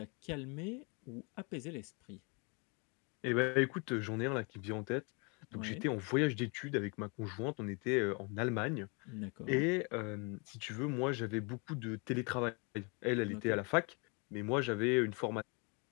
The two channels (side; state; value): right; quieter; 32.6 dB